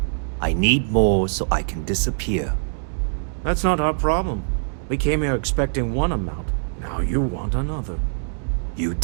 I need more so I can disappear. That's not our problem. We came here expecting one amount. Now you want another. You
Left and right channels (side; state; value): left; silent; digital silence